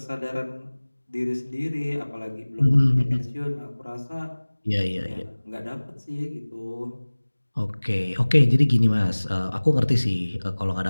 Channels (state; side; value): inverted; both; correlation -1.00